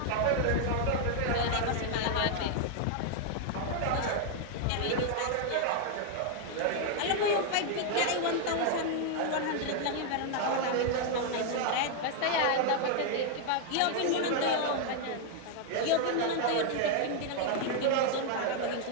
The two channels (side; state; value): both; different; correlation 0.00